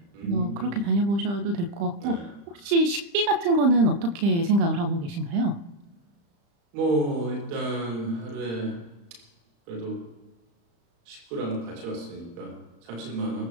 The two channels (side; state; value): left; late; 35 ms